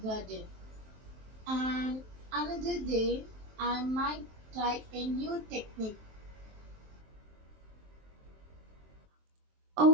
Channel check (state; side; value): late; left; 23 ms